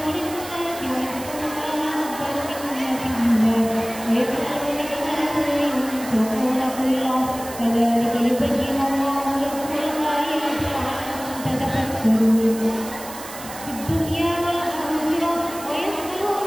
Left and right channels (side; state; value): right; noise; hiss, 13 dB below the sound